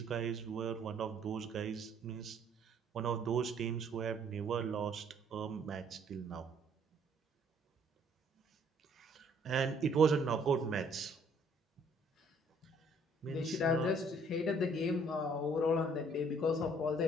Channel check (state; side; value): normal; both; correlation 0.62